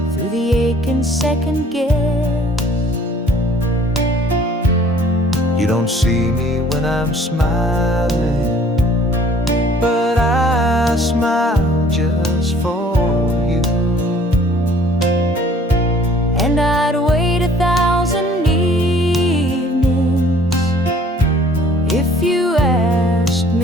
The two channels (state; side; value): normal; both; correlation 0.56